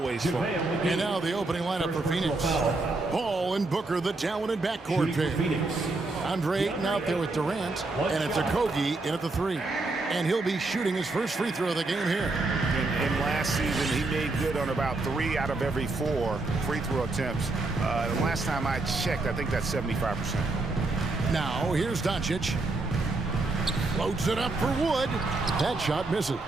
fun. And now the opening lineup for Phoenix. Paul and Booker, the talented backcourt pair. Andre Ayton out there with Durant, and it's Okogie in at the 3. And he'll be shooting his first free throw of the game here. And last season, he made good on about 3 out of every 4 free throw attempts. The last time I checked, I think that's 75%. Now, here's Doncic. Floats it up for Wood. That shot misses.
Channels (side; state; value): left; quieter; 3.3 dB